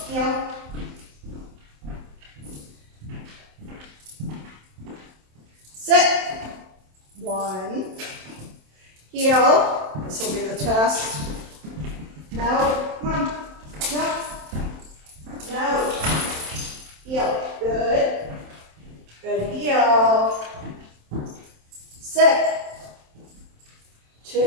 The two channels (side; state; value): left; late; 27 ms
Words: heel. Sit. 1. Heel. This will be the test. No. Come on. No. No. Heel. Good. Good heel. Sit.